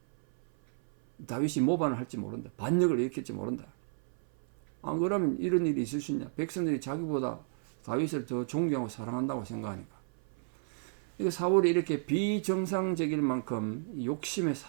다윗이 모반을 할지 모른다. 반역을 일으킬지 모른다. 안 그러면 이런 일이 있을 수 있냐. 백성들이 자기보다 다윗을 더 존경하고 사랑한다고 생각하니까. 사울이 이렇게 비정상적일 만큼 욕심에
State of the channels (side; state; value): left; silent; 56 dB below the other